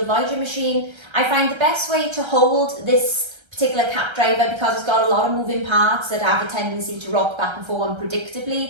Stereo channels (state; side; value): late; left; 1.3 ms